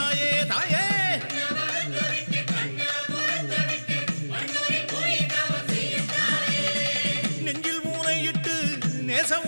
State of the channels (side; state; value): both; inverted; correlation -1.00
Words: தாயே. நெஞ்சில் மூனையிட்டு நேச